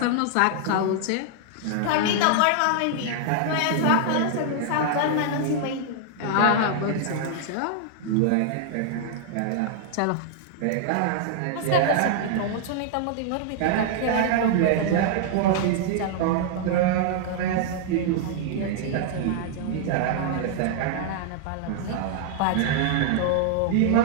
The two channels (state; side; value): different; both; correlation -0.01